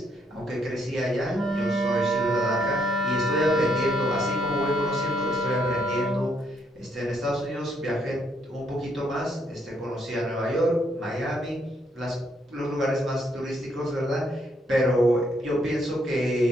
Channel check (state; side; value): normal; both; correlation 0.73